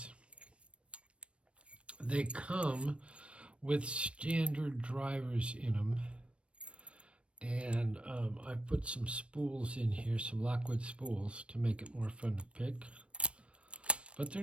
They come with standard drivers in them. And I've put some spools in here, some Lockwood spools, to make it more fun to pick. But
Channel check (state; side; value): late; left; 0.060 ms